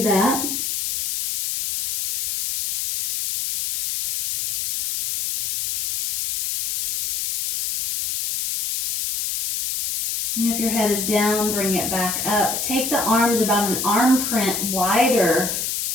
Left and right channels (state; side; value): noise; left; hiss, 2 dB below the sound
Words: that. And if your head is down, bring it back up. Take the arms about an arm print wider